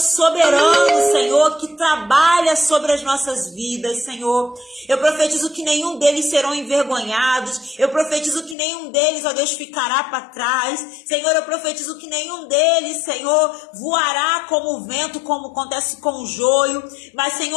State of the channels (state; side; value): drops out; right; at 8.6 s